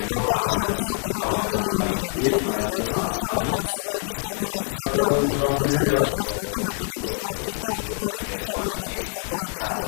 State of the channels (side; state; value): right; silent; 58 dB below the other